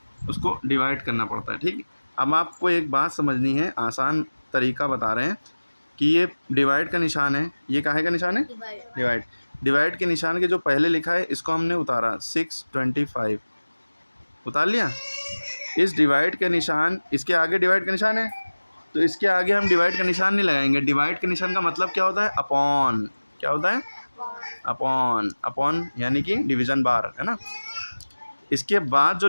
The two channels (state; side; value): inverted; both; correlation -1.00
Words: उसको डिवाइड करना पड़ता है, ठीक। अब आपको एक बात समझनी है, आसान तरीका बता रहे हैं कि ये डिवाइड का निशान है, ये काहे का निशान है? डिवाइड। डिवाइड के निशान के जो पहले लिखा है इसको हमने उतारा 625, उतार लिया। इस डिवाइड के निशान, इसके आगे डिवाइड का निशान है तो इसके आगे हम डिवाइड का निशान नहीं लगाएंगे। डिवाइड के निशान का मतलब क्या होता है? अपॉन। क्या होता है? अपॉन। अपॉन यानी कि डिवीजन बार, है ना? इसके बाद जो